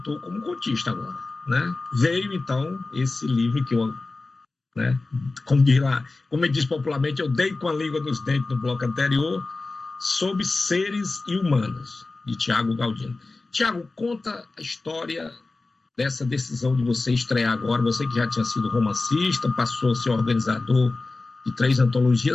como contista agora, né? Veio, então, esse livro que eu, né, como eu disse popularmente, eu dei com a língua nos dentes no bloco anterior, Sobre Seres e Humanos, de Tiago Galdino. Tiago, conta a história dessa decisão de você estrear agora, você que já tinha sido romancista, passou a ser organizador de 3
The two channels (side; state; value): right; quieter; 3.5 dB